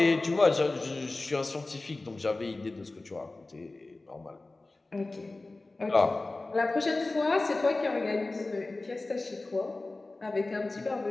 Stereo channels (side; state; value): right; quieter; 3.2 dB